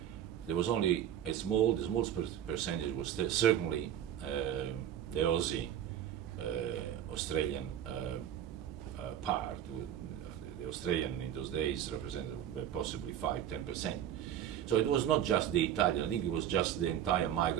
There was only the small percentage was certainly the Aussie, Australian part. The Australian in those days represented possibly 5-10%. So it was not just the Italian. I think it was just the entire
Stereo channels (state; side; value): quieter; left; 10.5 dB